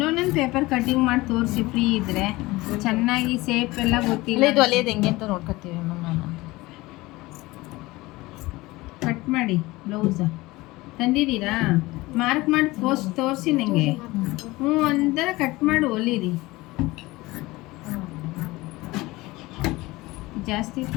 ಪೇಪರ್ ಕಟ್ಟಿಂಗ್ ಮಾಡಿ ತೋರಿಸಿ ಫ್ರೀ ಇದ್ರೆ ಚೆನ್ನಾಗಿ ಸೇಪ್ ಎಲ್ಲ ಗೊತ್ತಿಲ್ಲ. ಇದು ಹೊಲಿಯೋದು ಹೆಂಗೆ ಅಂತ ನೋಡ್ಕೊತೀವಿ ನಾನು. ಕಟ್ ಮಾಡಿ ಬ್ಲೌಸ ತಂದಿದ್ದೀರಾ? ಮಾರ್ಕ್ ಮಾಡಿ ತೋರಿಸಿ ನನಗೆ. ಒಂಥರ ಕಟ್ ಮಾಡಿ ಹೊಲಿರಿ. ಜಾಸ್ತಿ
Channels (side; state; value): right; quieter; 20.5 dB